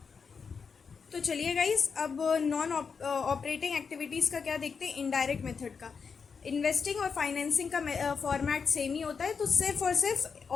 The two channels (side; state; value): right; quieter; 5.7 dB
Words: तो चलिए गाइस, अब नॉन ऑपरेटिंग एक्टिविटीज़ का क्या देखते हैं, इनडायरेक्ट मेथड का। इन्वेस्टिंग और फाइनेंसिंग का फॉर्मेट सेम ही होता है, तो सिर्फ और सिर्फ